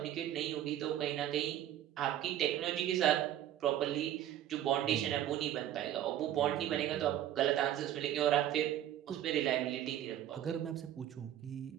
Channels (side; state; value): left; quieter; 11.9 dB